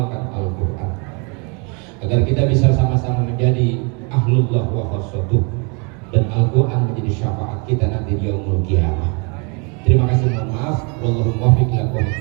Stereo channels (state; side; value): quieter; left; 33.7 dB